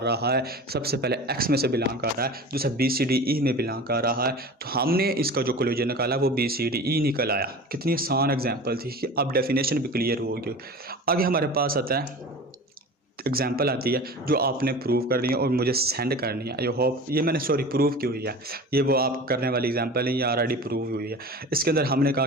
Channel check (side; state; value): both; normal; correlation 0.36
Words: रहा है। सबसे पहले एक्स में से बिलोंग कर रहा है, दूसरा बी सी डी ई में बिलोंग कर रहा है, तो हमने इसका जो कोलेजर निकाला वो बी सी डी ई निकल आया। कितनी आसान एग्जाम्पल थी कि अब डेफिनेशन भी क्लियर हो गई। आगे हमारे पास आता है एग्जाम्पल आती है जो आपने प्रूव करनी है और मुझे सेंड करनी है। आई होप ये मैंने प्रूव की हुई है, ये वो आप करने वाली एग्जाम्पल है, ये ऑलरेडी प्रूव हुई है। इसके अंदर हमने कहा